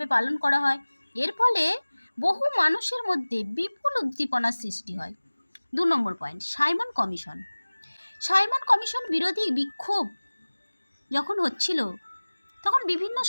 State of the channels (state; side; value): inverted; both; correlation -1.00